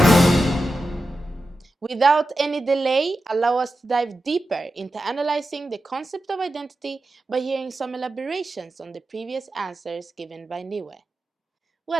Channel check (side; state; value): both; normal; correlation 0.91